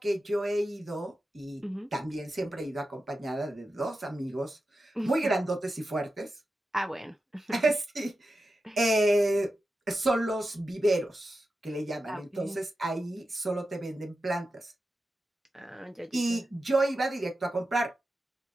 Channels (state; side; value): normal; both; correlation 0.91